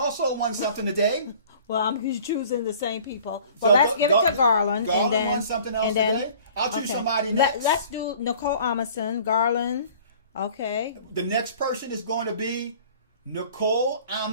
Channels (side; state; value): both; inverted; correlation -0.49